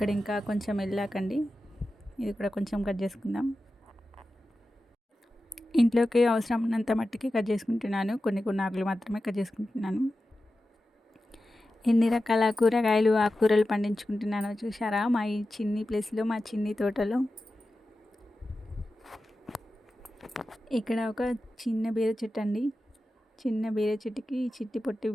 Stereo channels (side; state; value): both; normal; correlation 0.93